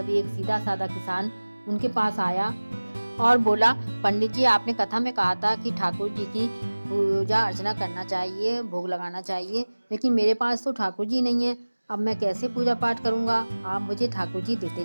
एक सीधा साधा किसान उनके पास आया और बोला, पंडित जी, आपने कथा में कहा था कि ठाकुर जी की पूजा अर्चना करना चाहिए, भोग लगाना चाहिए, लेकिन मेरे पास तो ठाकुर जी नहीं है। अब मैं कैसे पूजा पाठ करूँगा? आप मुझे ठाकुर जी देते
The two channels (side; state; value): both; inverted; correlation -1.00